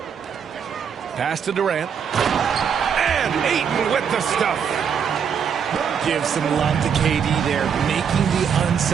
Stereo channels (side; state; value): left; quieter; 7.3 dB